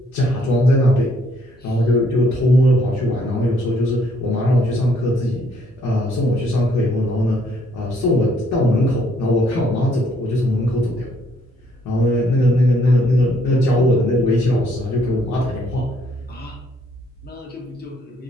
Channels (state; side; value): normal; both; correlation 0.67